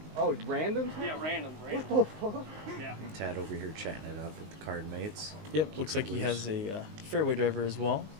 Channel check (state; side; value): late; left; 19 ms